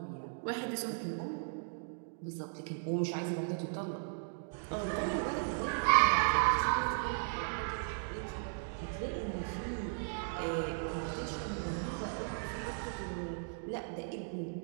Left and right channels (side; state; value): left; silent; digital silence